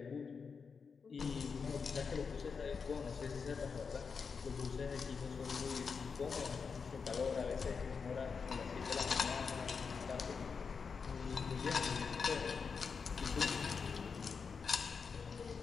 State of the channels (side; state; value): right; quieter; 5.6 dB